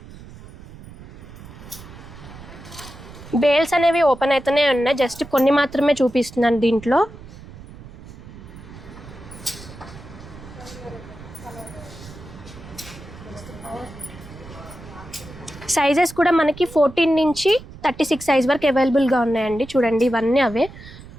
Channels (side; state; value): right; noise; rumble, 17 dB below the sound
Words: బేల్స్ అనేవి ఓపెన్ అయితేనే ఉన్నాయి, జస్ట్ కొన్ని మాత్రమే చూపిస్తున్నాను. దీంట్లో సైజెస్ కూడా మనకి 14 నుంచి 36 సైజ్ వరకు అవైలబుల్గా ఉన్నాయండి. చూడండి, ఇవన్నీ అవే.